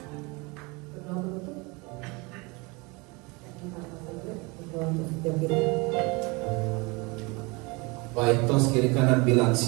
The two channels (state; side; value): quieter; left; 26.9 dB